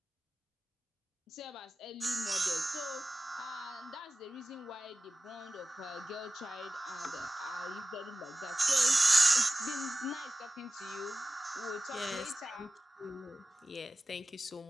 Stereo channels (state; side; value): normal; both; correlation 0.95